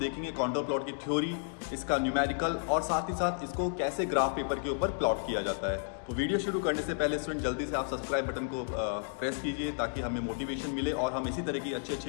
कॉन्टोर प्लॉट की थ्योरी, इसका न्यूमेरिकल और साथ ही साथ इसको कैसे ग्राफ पेपर के ऊपर प्लॉट किया जाता है। तो वीडियो शुरू करने से पहले स्टूडेंट जल्दी से आप सब्सक्राइब बटन को प्रेस कीजिए ताकि हमें मोटिवेशन मिले और हम इसी तरह की अच्छी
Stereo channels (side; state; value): right; silent; digital silence